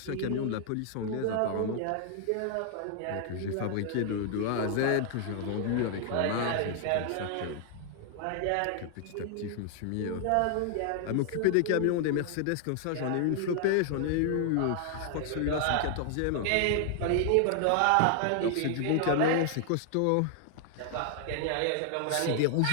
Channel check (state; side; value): different; both; correlation 0.00